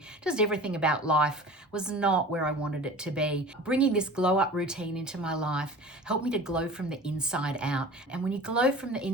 Just everything about life was not where I wanted it to be. Bringing this glow up routine into my life helped me to glow from the inside out. And when you glow from the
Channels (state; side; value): normal; both; correlation 0.39